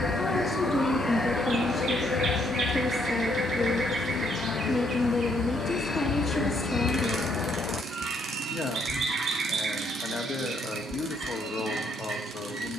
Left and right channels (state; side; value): normal; both; correlation 0.71